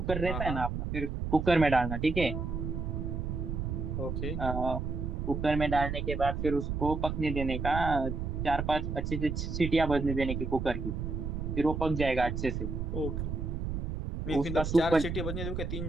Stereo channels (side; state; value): right; noise; rumble, 3 dB below the sound